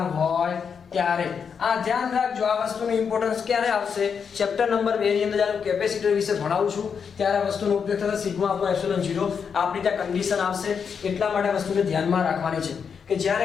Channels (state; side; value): quieter; right; 6.5 dB